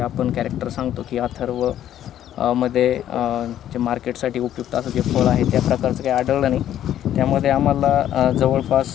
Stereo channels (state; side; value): quieter; right; 11.4 dB